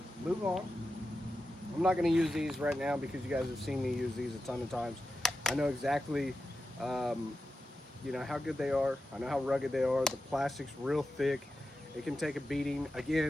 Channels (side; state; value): both; normal; correlation 0.91